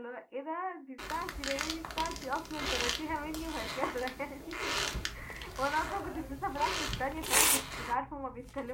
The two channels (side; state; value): both; identical; correlation 1.00